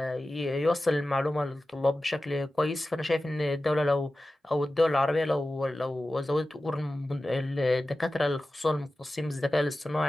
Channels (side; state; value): both; normal; correlation 0.95